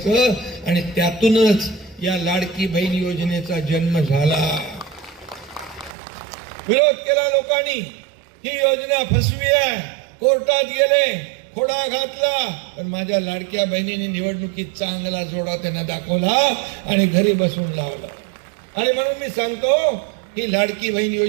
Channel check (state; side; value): drops out; left; at 6.0 s